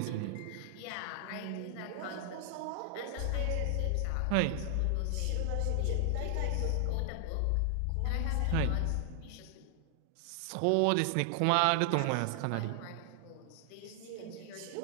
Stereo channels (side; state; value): both; different; correlation 0.00